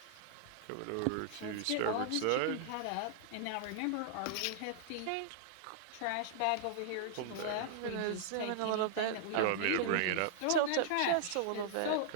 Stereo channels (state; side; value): different; both; correlation -0.01